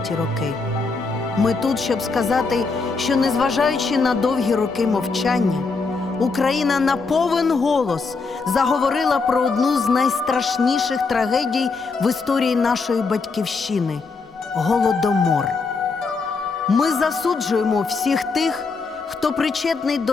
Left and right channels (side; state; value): right; quieter; 4.3 dB